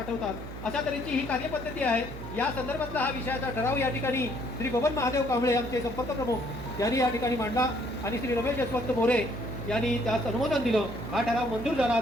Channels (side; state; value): right; noise; hum, 11 dB below the sound